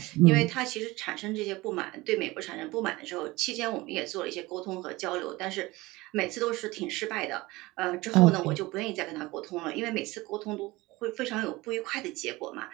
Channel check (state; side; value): quieter; left; 20.8 dB